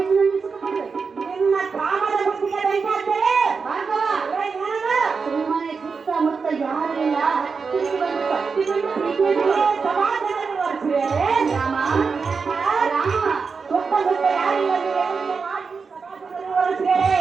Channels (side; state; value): left; quieter; 5.1 dB